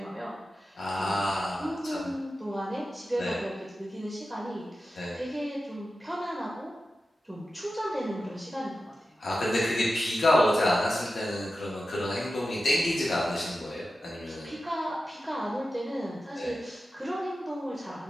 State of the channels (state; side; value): normal; both; correlation 0.93